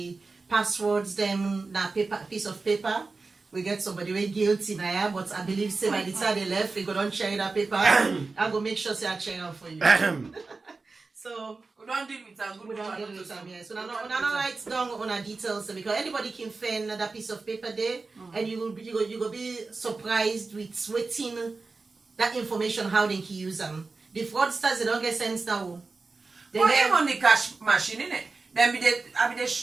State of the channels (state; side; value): quieter; left; 3.9 dB